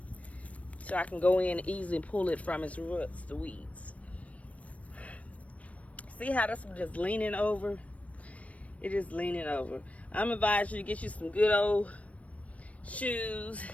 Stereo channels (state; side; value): late; right; 0.066 ms